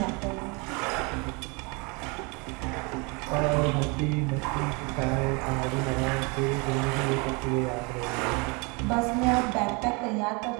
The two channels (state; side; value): quieter; left; 30.0 dB